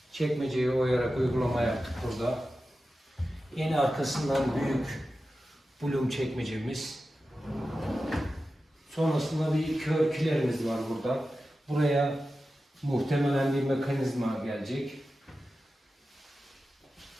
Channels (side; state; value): both; normal; correlation 0.93